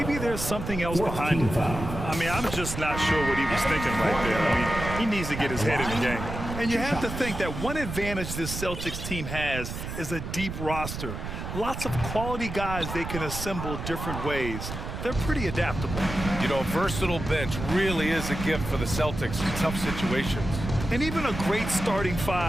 there's something else behind it. I mean, I'm just not sure what he was thinking right there. I mean, he needs to get his head in the game. And you have to think that one advantage this Celtics team has is a deep roster. Lots of quality guys they can assemble different ways. They're pretty adaptable. You know, a versatile bench really is a gift for the Celtics in tough situations. And even a great starting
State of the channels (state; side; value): noise; right; rumble, 7 dB below the sound